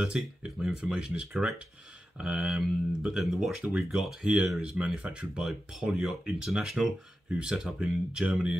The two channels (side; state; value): both; normal; correlation 0.92